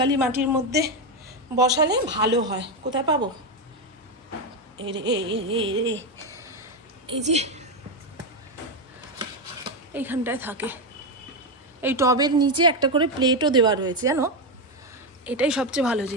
মাটির মধ্যে বসালে ভালো হয়। কোথায় পাবো? এই যে এইখানটায় থাকে। এই টবের নিচে একটা করে প্লেটও দেওয়া রয়েছে, জানো? এটাই সবচেয়ে ভালো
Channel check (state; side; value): normal; both; correlation 0.08